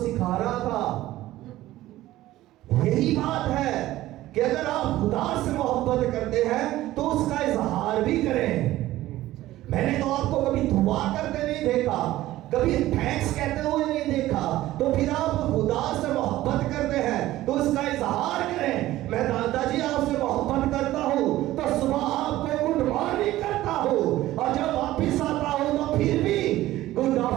रहा था, यही बात है कि अगर आप खुदा से मोहब्बत करते हैं तो उसका इजहार भी करें। मैंने तो आपको कभी दुआ करते नहीं देखा, कभी थैंक्स कहते हुए नहीं देखा, तो फिर आप खुदा से मोहब्बत करते हैं तो उसका इजहार करें। मैं दादाजी आपसे मोहब्बत करता हूं तो सुबह आपको गुड मॉर्निंग करता हूं, और जब वापिस आता हूं तो फिर भी गुड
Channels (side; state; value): left; quieter; 15.6 dB